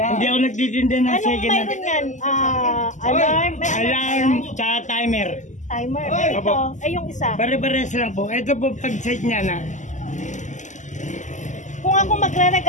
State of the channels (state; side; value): late; right; 0.35 ms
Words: ako nagtitinda ng Anong second hand. mayroon yan? Alarm? May Alarm, tsaka timer. Timer? Eh, ito. Eh, yung isa. Pare-pares lang po. Ito po pag-set niya na. Kung ako